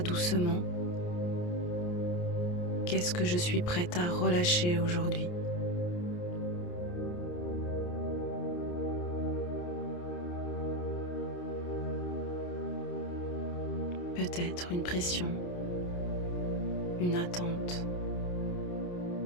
doucement, qu'est-ce que je suis prête à relâcher aujourd'hui ? Peut-être une pression, une attente,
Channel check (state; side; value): late; right; 28 ms